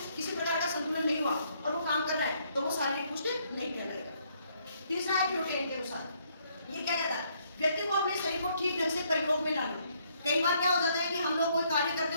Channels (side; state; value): both; inverted; correlation -0.70